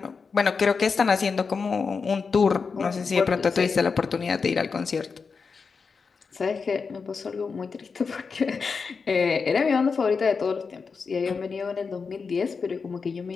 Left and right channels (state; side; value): quieter; right; 5.1 dB